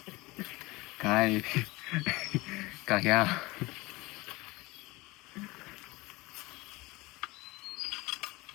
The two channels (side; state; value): right; quieter; 22.1 dB